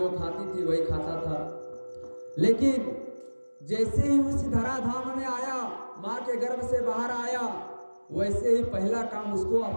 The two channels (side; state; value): both; inverted; correlation -1.00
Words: खाती थी वही खाता था। लेकिन जैसे ही उस धराधाम में आया, माँ के गर्भ से बाहर आया, वैसे ही पहला काम उसको